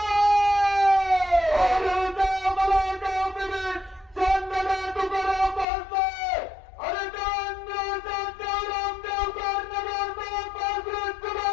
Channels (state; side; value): drops out; right; at 5.7 s